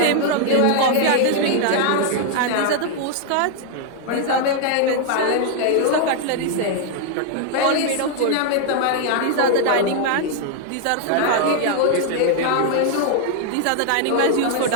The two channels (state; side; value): different; both; correlation 0.00